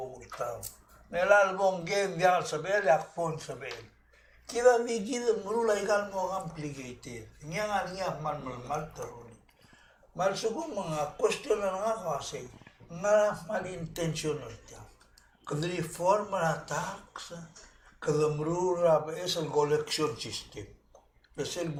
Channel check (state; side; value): identical; both; correlation 1.00